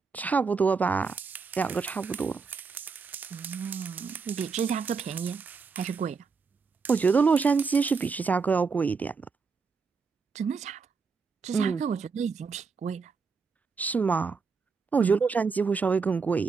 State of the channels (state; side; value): quieter; left; 5.1 dB